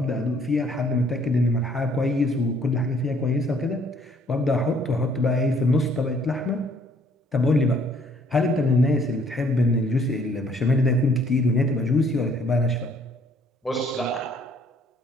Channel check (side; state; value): both; normal; correlation 0.62